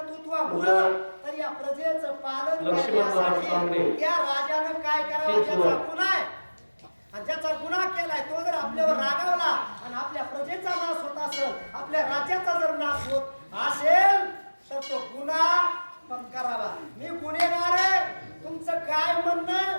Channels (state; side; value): inverted; both; correlation -1.00